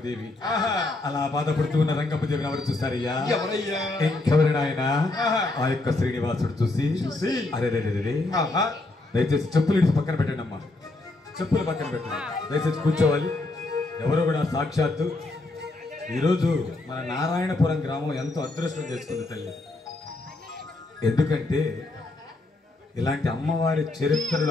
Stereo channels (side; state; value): right; quieter; 3.0 dB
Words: అలా బాధపడుతూ ఉన్న రంగమ్మదేవిని ఎవరు చూస్తారయ్యా? ఇంకెవరైనా ఆయన ఆ యొక్క శ్రీనివాసుడు చూసి అరే దయచేసి చెప్పులు ఇడిచి పక్కన పెట్టండి అమ్మా, చెప్పులు పక్కన పెట్టండి, దయచేసి కూర్చోవాలి. ఎవరు కూడా సాక్షాత్తు ఈరోజు మన నారాయణపురం గ్రామం ఎంతో అదృష్టం చేసుకుంది తల్లి. ఎందుకంటే ఇలాంటి అమ్మవారి